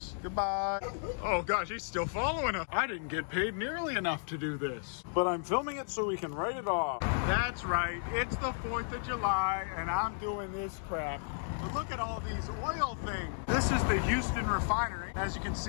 Goodbye. Oh gosh, he's still following us. I didn't get paid nearly enough to do this, but I'm filming it so we can write it off. That's right. It's the 4th of July and I'm doing this crap. But look at all these oil things. This is the Houston refinery. As you can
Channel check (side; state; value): right; silent; digital silence